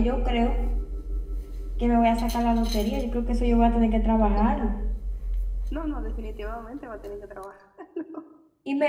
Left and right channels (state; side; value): identical; both; correlation 1.00